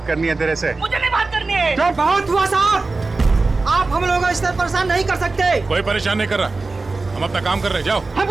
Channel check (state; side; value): quieter; left; 3.6 dB